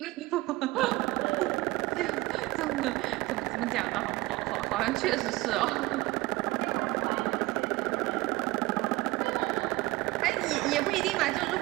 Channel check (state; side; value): quieter; left; 20.5 dB